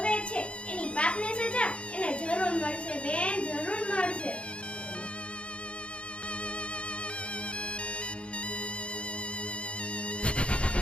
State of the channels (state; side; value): late; right; 0.059 ms